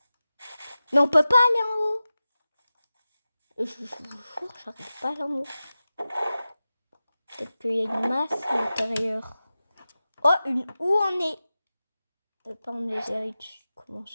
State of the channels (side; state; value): both; inverted; correlation -0.95